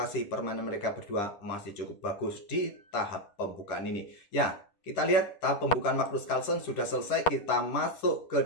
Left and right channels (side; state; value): right; late; 9.9 ms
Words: permainan mereka berdua masih cukup bagus di tahap pembukaan ini. Ya, kita lihat tahap pembukaan Magnus Carlsen sudah selesai. Kita masuk